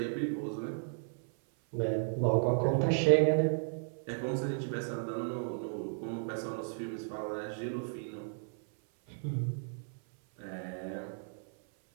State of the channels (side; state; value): left; silent; 55 dB below the other